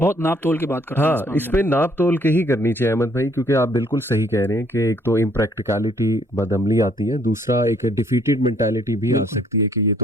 ناپ تول کے بات کرتا ہوں. ہاں اس پہ ناپ تول کے ہی کرنی چاہیے احمد بھائی, کیونکہ آپ بالکل صحیح کہہ رہے ہیں کہ ایک تو امپریکٹیکلٹی بدعملی آتی ہے, دوسرا ایک ڈیفیٹڈ مینٹیلٹی بھی آ سکتی ہے کہ یہ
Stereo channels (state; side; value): normal; both; correlation 0.64